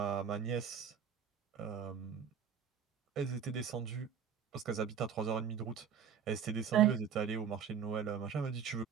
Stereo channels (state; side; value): quieter; left; 7.6 dB